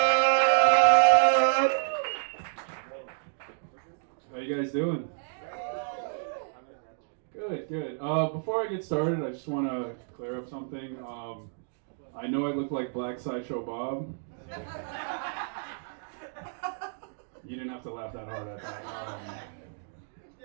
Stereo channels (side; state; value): left; silent; digital silence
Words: How you guys doing? Good. Before I get started, I just want to clear up something. I know I look like Black Sideshow Bob. You didn't have to laugh that hard at that.